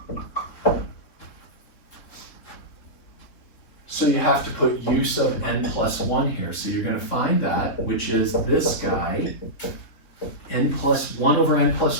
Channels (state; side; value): late; right; 3.7 ms